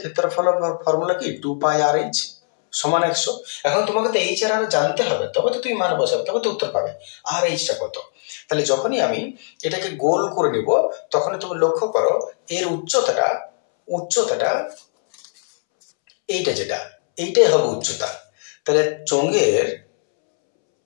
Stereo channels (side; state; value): right; silent; 65 dB below the other